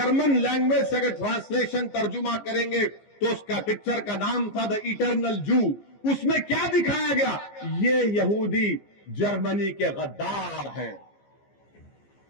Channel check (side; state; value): right; late; 15 ms